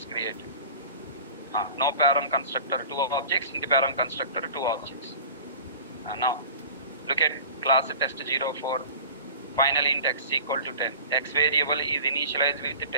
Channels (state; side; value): inverted; both; correlation -0.38